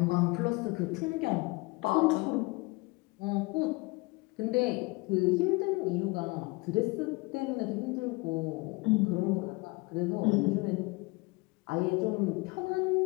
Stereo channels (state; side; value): quieter; right; 25.1 dB